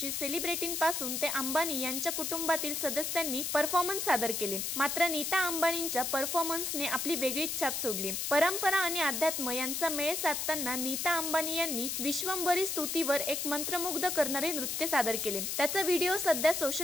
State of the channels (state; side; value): noise; left; hiss, 2 dB below the sound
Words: सेलिब्रिटींपासून ते अंबानी यांच्या कुटुंबातील सदस्यांनी परफॉर्मन्स सादर केले। मात्र नीता अंबानींच्या परफॉर्मन्सने आपली वेगळीच छाप सोडली। परंपरा आणि अध्यात्म यांचा मेळ साधताना नीता अंबानी यांनी विश्वंभरी स्तुतीवर एक मंत्रमुग्ध करणारे नृत्य सादर केले। त्याचा व्हिडिओ सध्या